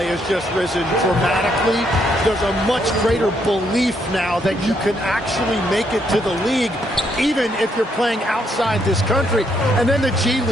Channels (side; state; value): both; normal; correlation 0.74